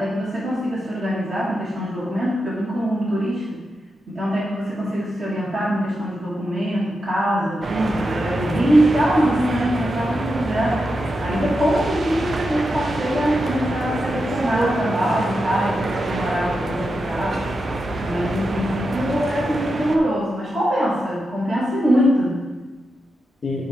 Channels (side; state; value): both; normal; correlation 0.88